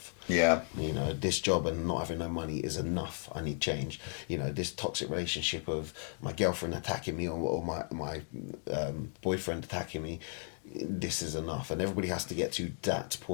Yeah. You know, this job and not having no money is enough. I need change. You know, this toxic relationship of my girlfriend attacking me or my boyfriend attacking me, this is enough. And everybody has to get to that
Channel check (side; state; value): right; silent; 55 dB below the other